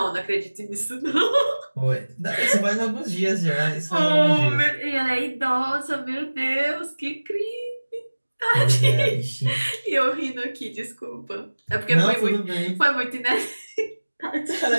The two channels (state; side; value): inverted; both; correlation -1.00